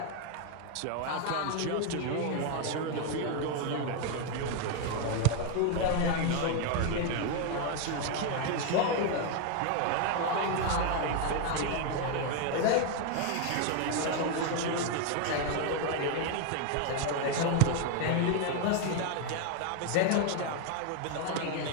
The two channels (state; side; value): different; both; correlation 0.01